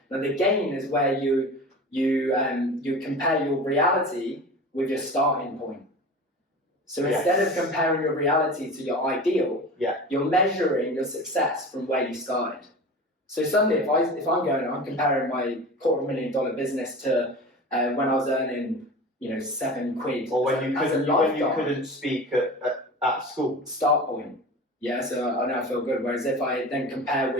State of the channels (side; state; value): both; normal; correlation 0.34